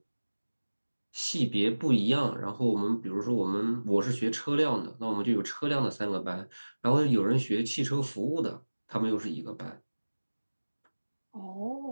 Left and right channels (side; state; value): both; inverted; correlation -1.00